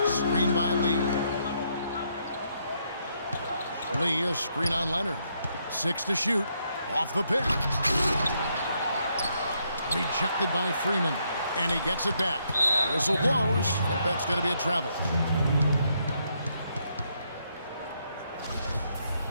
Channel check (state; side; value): inverted; both; correlation -0.75